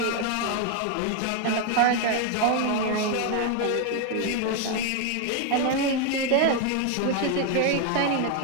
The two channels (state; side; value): different; both; correlation 0.01